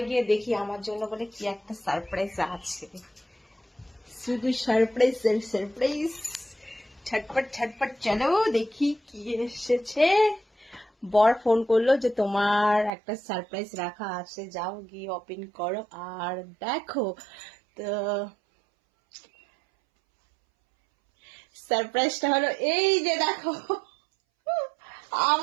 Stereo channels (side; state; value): left; drops out; at 12.9 s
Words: গিয়ে দেখি আমার জন্য বলে কি একটা সারপ্রাইজ আছে। শুধু সারপ্রাইজ সারপ্রাইজ, ছটপট ছটপট। চলো দেখি কি এসেছে। বর ফোন করলো যে তোমার একটা সারপ্রাইজ রাখা আছে, যাও গিয়ে ওপেন করো আর দেখো। তো সারপ্রাইজটা হলো এই যে দেখো।